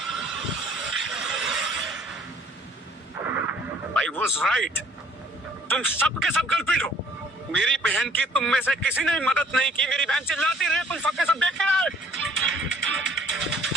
I was right. तुम सब के सब कल्प्रिट हो। मेरी बहन की तुम में से किसी ने मदद नहीं की। मेरी बहन चिल्लाती रही, तुम सबके सब देख रहे।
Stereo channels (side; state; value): both; normal; correlation 0.57